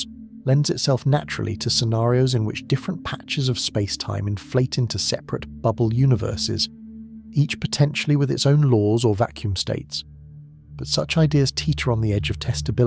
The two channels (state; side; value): identical; both; correlation 1.00